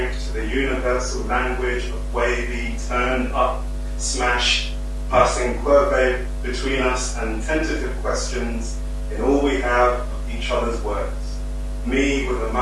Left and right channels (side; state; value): both; identical; correlation 1.00